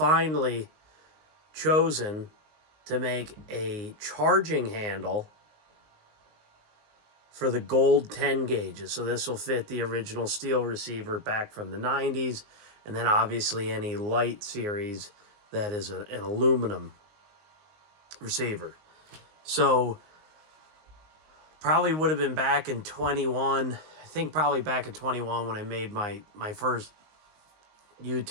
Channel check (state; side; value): late; left; 19 ms